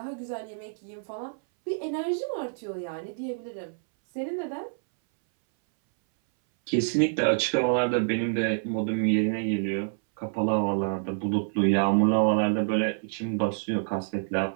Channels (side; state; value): left; silent; 60 dB below the other